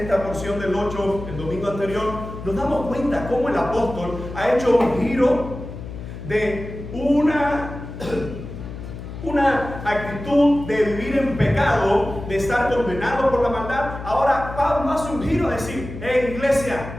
porción del 8 el domingo anterior, nos damos cuenta cómo el apóstol ha hecho un giro de una actitud de vivir en pecado, de estar condenado por la maldad. Ahora Pablo hace un giro a decir: hey, iglesia,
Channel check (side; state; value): left; noise; hum, 10 dB below the sound